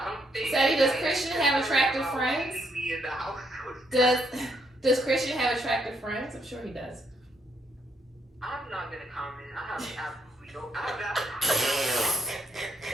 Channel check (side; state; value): both; normal; correlation 0.74